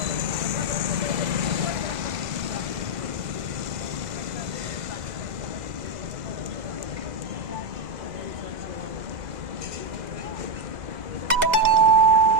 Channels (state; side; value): late; left; 2.0 ms